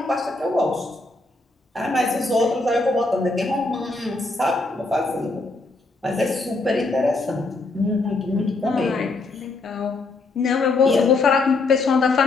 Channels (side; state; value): right; quieter; 3.4 dB